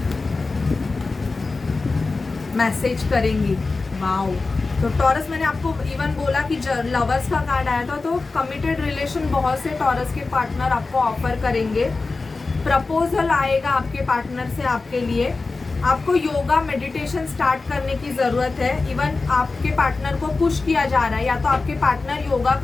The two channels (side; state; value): right; quieter; 3.8 dB